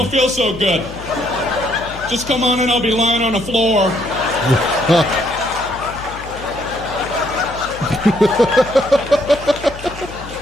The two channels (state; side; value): noise; left; hum, 15 dB below the sound